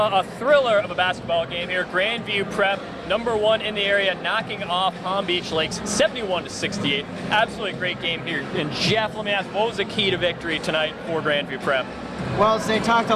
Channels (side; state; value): both; identical; correlation 1.00